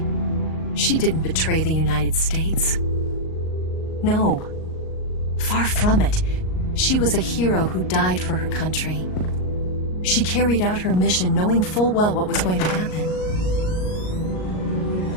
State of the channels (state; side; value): late; right; 38 ms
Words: She didn't betray the United States. No. Far from it. She was a hero who died for her country. She carried out her mission knowing full well what was going to happen.